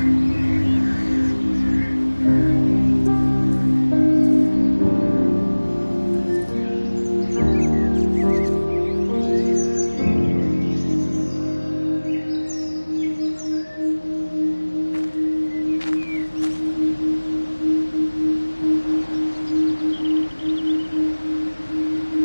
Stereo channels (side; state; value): both; inverted; correlation -1.00